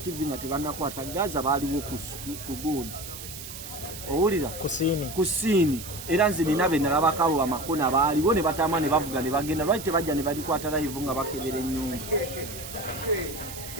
nga tebannakwata Gaza baaliwo ku gundi owulira ku siini era nze nina be nalabakabo amakona baaliwo ne batama ne bavuga ne bagenda lwaki tebajja ne babikwata live nga bakebera ennyumba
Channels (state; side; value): noise; right; hiss, 11 dB below the sound